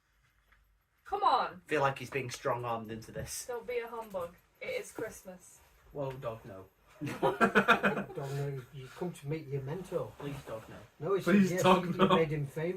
Come on, Feel like he's being strong-armed into this. don't be a humbug. It is Christmas. Whoa, dog, no. Don't know. You come to meet your mentor. Please, dog, no. No, he Please said yes. don't, You no. made him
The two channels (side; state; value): both; identical; correlation 1.00